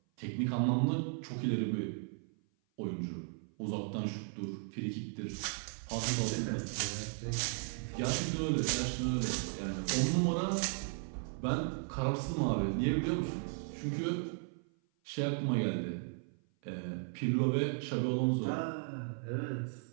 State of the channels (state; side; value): silent; left; 54 dB below the other